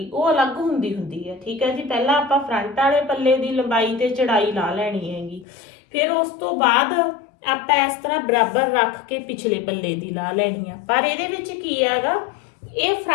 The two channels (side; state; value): right; drops out; at 5.5 s